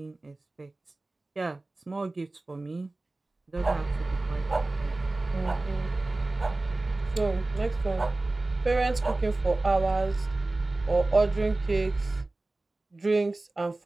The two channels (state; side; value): quieter; left; 3.0 dB